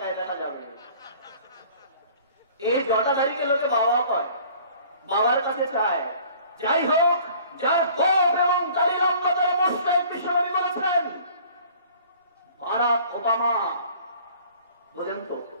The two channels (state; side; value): inverted; both; correlation -0.51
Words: দেখা যাবে। এই জটাধারীকে লোকে বাবা কয়, বাবার কাছে চায়। যাই হোক, যার গোপ এবং দাড়ি লম্বা তারা মুশরিক, বিশ্বনবী বলেছেন। বারাক ওবামা, বুঝেন তো,